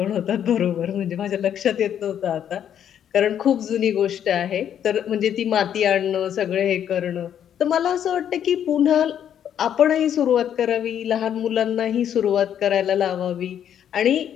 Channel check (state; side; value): quieter; right; 9.5 dB